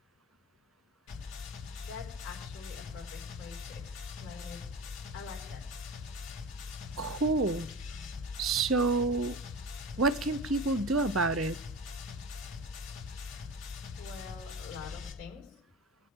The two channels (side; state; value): both; normal; correlation 0.30